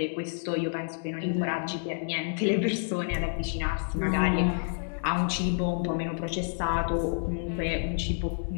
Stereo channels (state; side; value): silent; right; digital silence